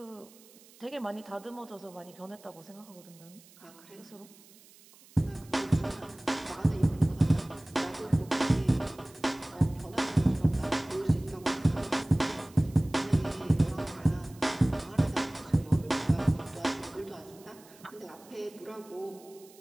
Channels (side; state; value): right; noise; hiss, 24 dB below the sound